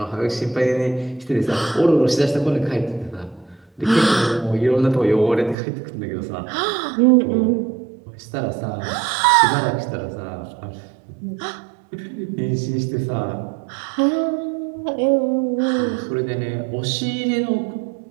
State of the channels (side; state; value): left; drops out; at 5.6 s